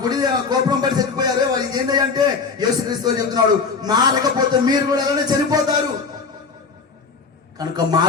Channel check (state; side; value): quieter; right; 5.0 dB